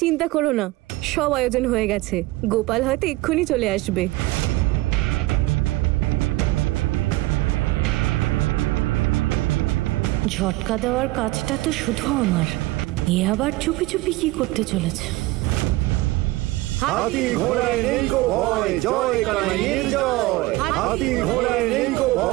চিন্তা করো না, সব আয়োজন হয়ে গেছে। গোপাল হয়তো এক্ষুনি চলে আসবে। ঝটকা দেওয়ার কাজটা তো শুধু আমার, এ আবার চুপি চুপি কি করতে চলেছে? হাতি ঘোড়ায় নেই গো ভয়, জয় কানাইয়ের জয়। হাতি ঘোড়ায় নেই গো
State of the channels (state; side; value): quieter; left; 19.5 dB